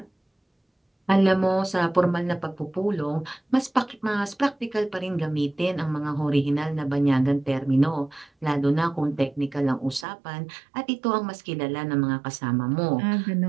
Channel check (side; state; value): left; drops out; at 10.1 s